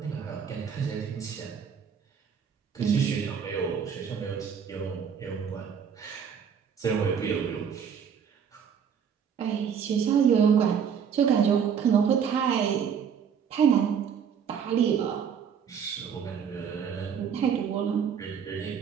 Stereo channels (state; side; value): quieter; left; 7.4 dB